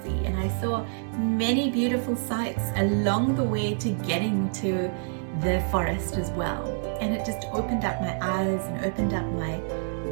see. And I saw many beautiful sights along the way to getting to the forest as well. And it just opened up my eyes and opened up my,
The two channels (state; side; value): silent; left; digital silence